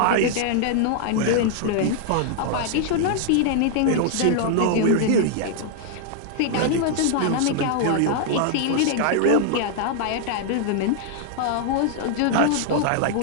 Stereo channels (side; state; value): both; different; correlation -0.01